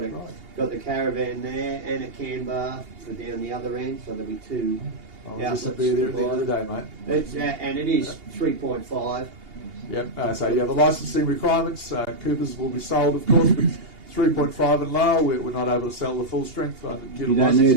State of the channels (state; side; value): late; left; 2.8 ms